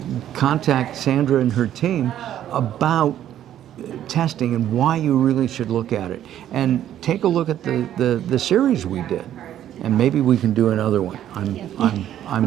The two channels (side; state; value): left; quieter; 11.3 dB